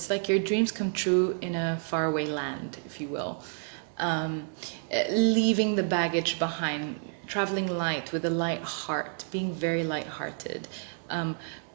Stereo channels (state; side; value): silent; left; digital silence